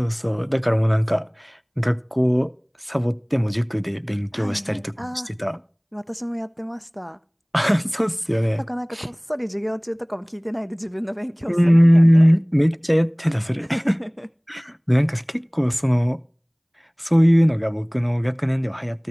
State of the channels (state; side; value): identical; both; correlation 1.00